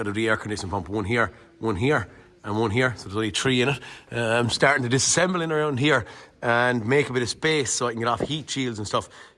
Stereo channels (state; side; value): identical; both; correlation 1.00